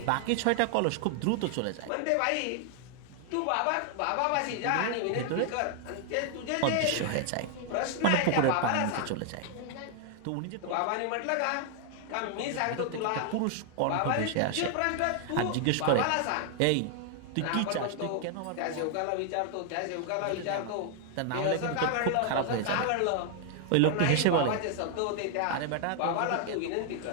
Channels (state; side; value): different; both; correlation 0.00